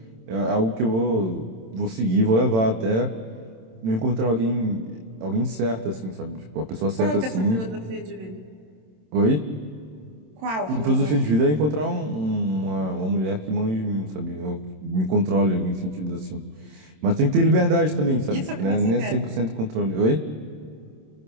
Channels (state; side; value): late; left; 27 ms